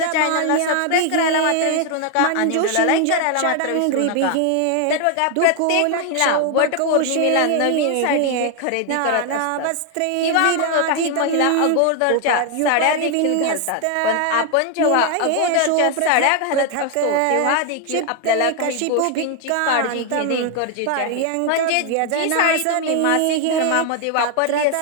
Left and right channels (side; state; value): both; different; correlation 0.00